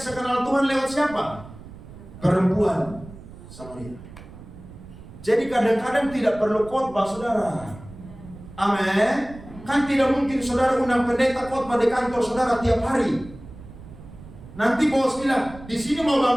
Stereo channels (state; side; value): noise; right; rumble, 17 dB below the sound